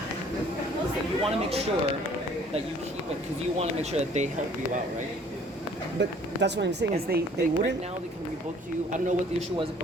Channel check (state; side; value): normal; both; correlation 0.56